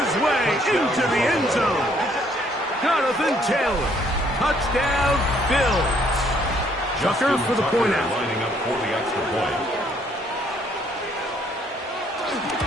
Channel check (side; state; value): both; normal; correlation 0.66